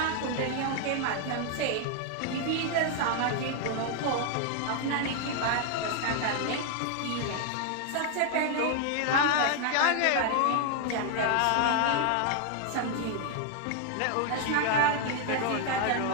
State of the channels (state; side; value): different; both; correlation 0.00